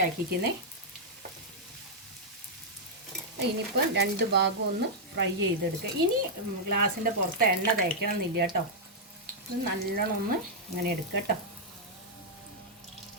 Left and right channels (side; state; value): both; normal; correlation -0.06